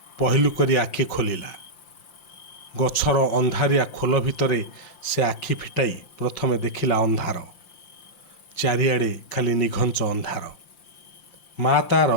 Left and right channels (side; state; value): right; late; 5.7 ms